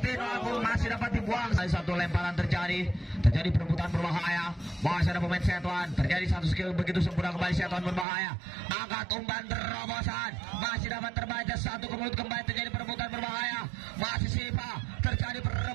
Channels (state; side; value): drops out; left; at 8.1 s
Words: Agung masih dapat dibuang. Satu lemparan terjadi perebutan berbahaya. Masih ada pemain Setuan. Terjadi satu skill begitu sempurna kembali Setuan berbahaya. Angkat umpan terobosan. Masih dapat terbaca, satu ke mulut kembali, terjadi perebutan berbahaya. Masih Sipa, terjadi